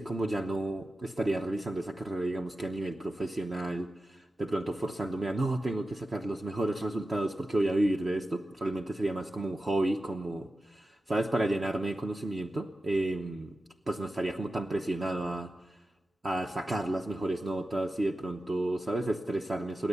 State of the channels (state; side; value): normal; both; correlation 0.93